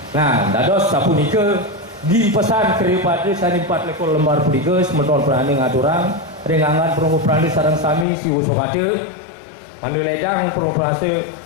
Nah, dados sapunika dipesan kriya pada sani 4 lekor lembar punika semeton Perandu ngaturang ringangan perlu Perandu sareng sami si usokade mandu ledang perlu prase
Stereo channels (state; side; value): drops out; right; at 8.1 s